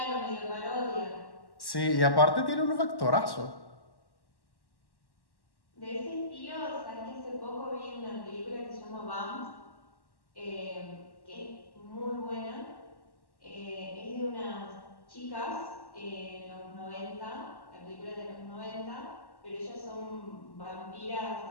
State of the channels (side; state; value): right; late; 1.1 ms